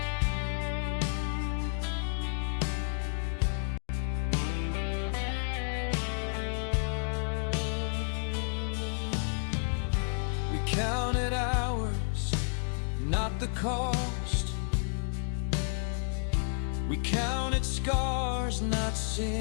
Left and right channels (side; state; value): right; silent; digital silence